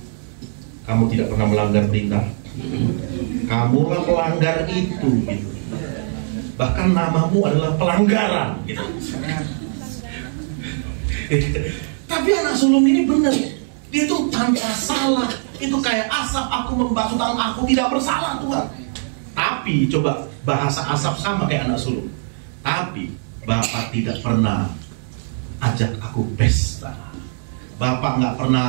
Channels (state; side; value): silent; left; digital silence